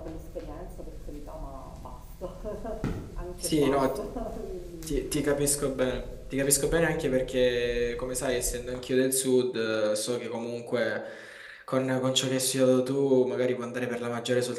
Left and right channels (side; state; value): both; identical; correlation 1.00